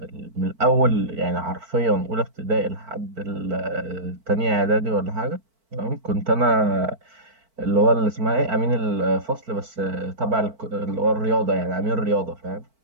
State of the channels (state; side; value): late; left; 4.5 ms